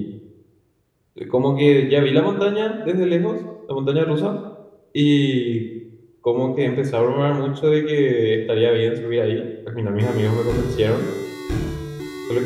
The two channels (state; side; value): identical; both; correlation 1.00